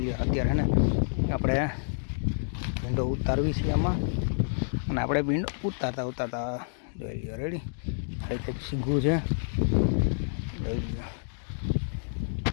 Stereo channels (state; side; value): silent; right; digital silence